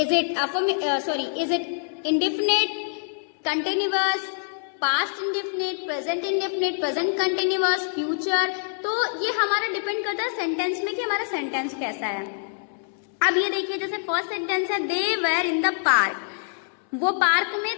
it indefinite, continuous, past indefinite, present indefinite, present continuous, future? तो ये हमारा depend करता है sentence में कि हमारा sentence कैसा है। अब ये देखिए, जैसे फर्स्ट सेंटेंस है they were in the park, वो पार्क में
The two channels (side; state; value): right; silent; 62 dB below the other